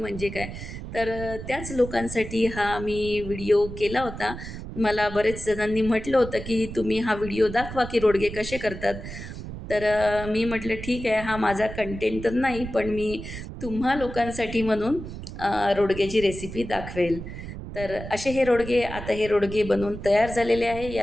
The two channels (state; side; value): noise; right; rumble, 10 dB below the sound